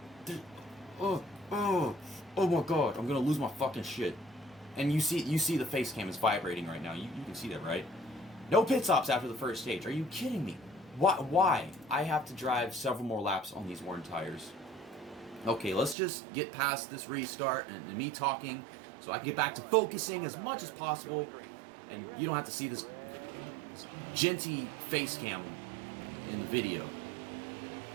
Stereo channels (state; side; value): drops out; left; at 16.0 s